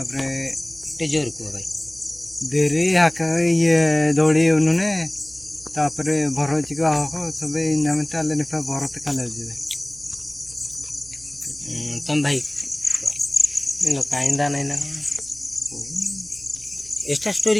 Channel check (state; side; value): noise; right; hum, 23 dB below the sound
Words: ଟିକେ ଜୋର କୁହ ଭାଇ। ଦେରି ହାକା ଇଏ ଦୌଡ଼ି ଉନୁନେ ତାପରେ ଭରଚିକ ହକ ସବେ ନାମେ ତାଲେ ନିପା ଭରତ କାଲେ ଯିବେ। ତମ ଭାଇ କାଇନ୍ଦା ନାଇଁ ନା ଏଟା